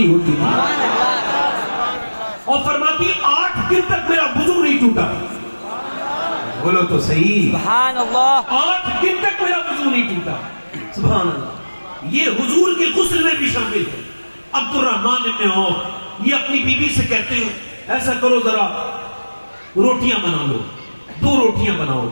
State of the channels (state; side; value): inverted; both; correlation -1.00